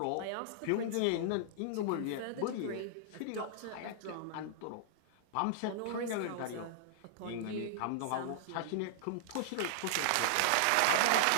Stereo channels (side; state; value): both; different; correlation -0.01